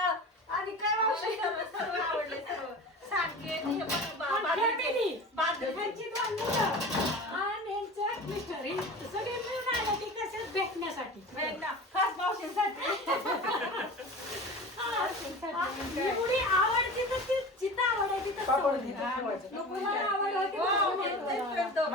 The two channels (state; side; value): normal; both; correlation 0.34